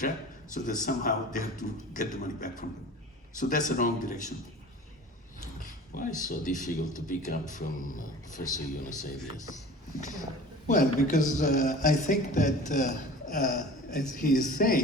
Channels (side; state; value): both; normal; correlation 0.41